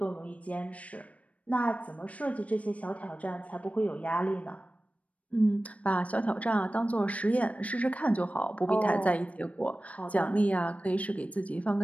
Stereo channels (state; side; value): late; right; 0.066 ms